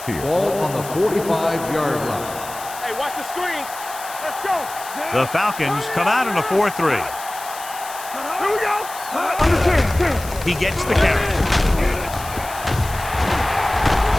here. Ball on the 45-yard line. Hey, watch the screen. Let's go. The Falcons come out in a 4-3. Here we go. Under 10. He gets the carry.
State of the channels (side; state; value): left; noise; hiss, 13 dB below the sound